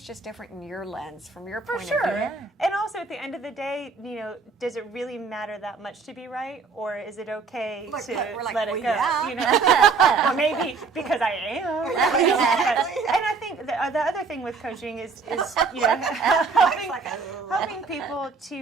just different in your lens, from your point For of sure. view. And also at the end of the day, does it really matter that much to be right, or is it okay Look, to we're like, let it well, go? yeah. Well, maybe because I am. And I think the other thing with coaching is helping people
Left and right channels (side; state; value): left; quieter; 4.7 dB